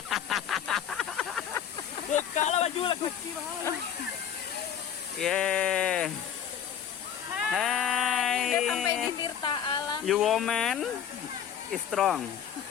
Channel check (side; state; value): right; quieter; 8.9 dB